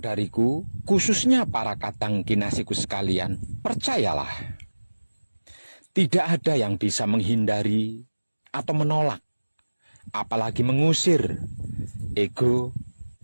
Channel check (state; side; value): inverted; both; correlation -1.00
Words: khususnya para kadang kinasiku sekalian, percayalah, tidak ada yang bisa menghindari atau menolak, apalagi mengusir ego